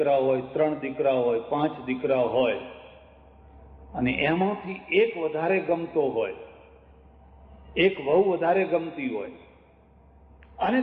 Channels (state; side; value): identical; both; correlation 1.00